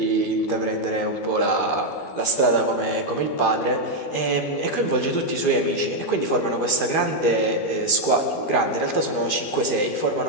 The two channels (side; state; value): right; late; 12 ms